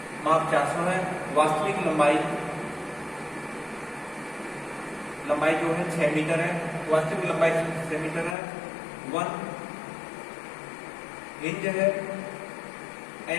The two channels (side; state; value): right; drops out; at 8.3 s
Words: माप 400 है, वास्तविक लंबाई जो है 6 मीटर है, वास्तविक लंबाई 6 मीटर है। 1 इंच है,